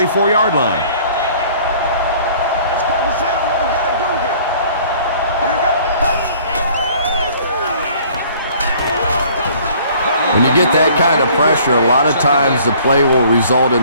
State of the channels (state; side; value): inverted; both; correlation -0.54